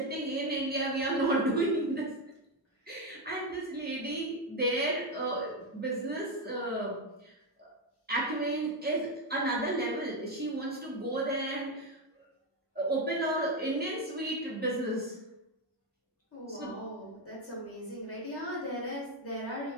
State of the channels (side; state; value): both; normal; correlation 0.09